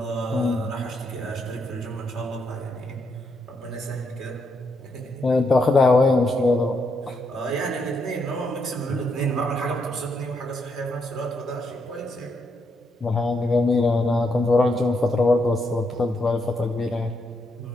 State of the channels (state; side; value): normal; both; correlation 0.78